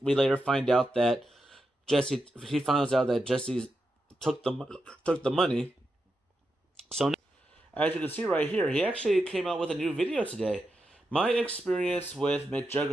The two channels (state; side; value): normal; both; correlation 0.87